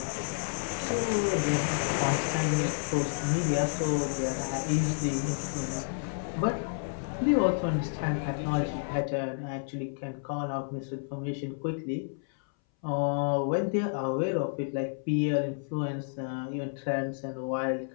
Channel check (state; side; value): silent; right; 58 dB below the other